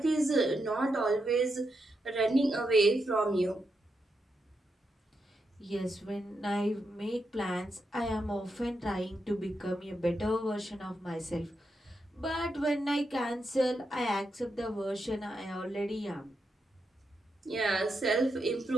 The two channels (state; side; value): normal; both; correlation 0.84